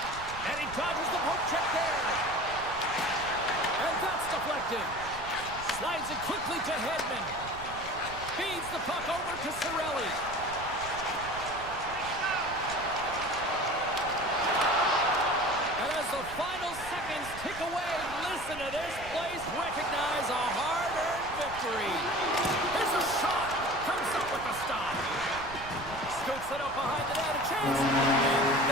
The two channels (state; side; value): noise; right; rumble, 14 dB below the sound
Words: And he dodges the poke check there. And that's deflected. Slides it quickly to Hedman. Feeds the puck over to Cirelli. And as the final seconds tick away, listen to this place recognize a hard-earned victory. Here's a shot. Comes up with the stop. Scoots it up behind the net. A chance. And